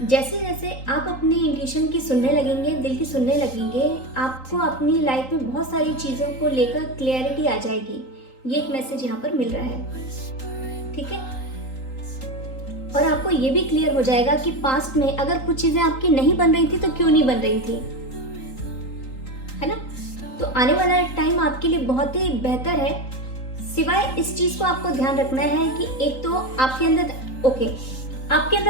जैसे जैसे आप अपने इंट्यूशन की सुनने लगेंगे, दिल की सुनने लगेंगे, आपको अपनी लाइफ में बहुत सारी चीज़ों को लेकर क्लैरिटी आ जाएगी। ये एक मैसेज यहाँ पर मिल रहा है, ठीक है। और आपको ये भी क्लियर हो जाएगा कि पास्ट में अगर कुछ चीज़ें आपकी नहीं बन रही थी तो क्यों नहीं बन रही थी, है ना। तो आने वाला टाइम आपके लिए बहुत ही बेहतर है। सिवाय इस चीज़ को आपको ध्यान रखना है कि एक तो आपके अंदर आपके अंदर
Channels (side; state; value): right; late; 3.8 ms